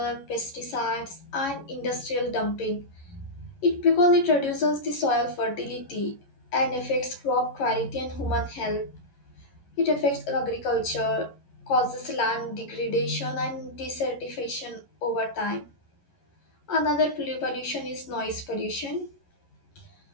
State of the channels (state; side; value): late; right; 11 ms